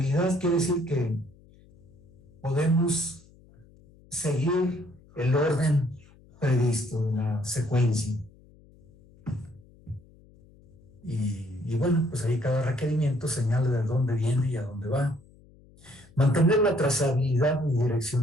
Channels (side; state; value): left; noise; hum, 27 dB below the sound